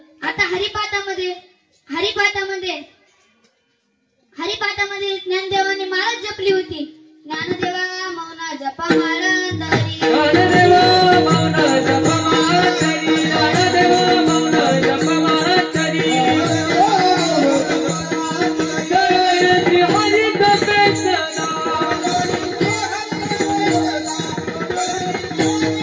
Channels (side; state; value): both; identical; correlation 1.00